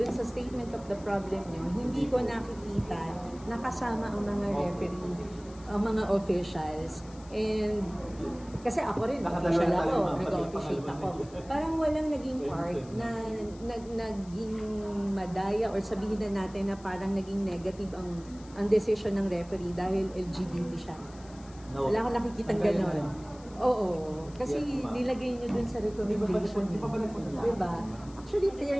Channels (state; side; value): noise; left; hiss, 23 dB below the sound